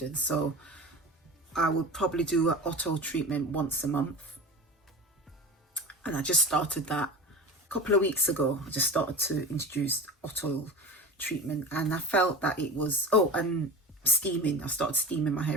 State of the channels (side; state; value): both; normal; correlation 0.32